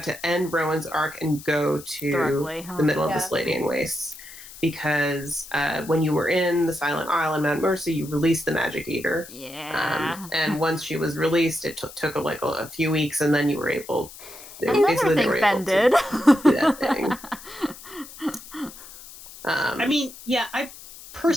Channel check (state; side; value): noise; left; hiss, 17 dB below the sound